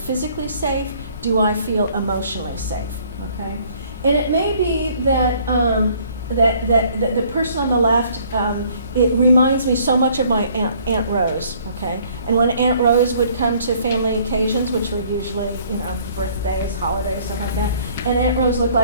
safe? Do I feel emotionally safe? Okay? And it may be that that the person on the left, it reminds me so much of my Aunt Rose, okay? And when Aunt Rose would come to family occasions, which were usually, birthdays, holidays, stuff like that, and Aunt Rose looked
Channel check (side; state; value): both; inverted; correlation -0.59